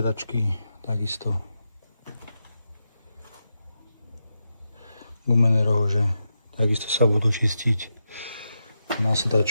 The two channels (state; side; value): inverted; both; correlation -0.87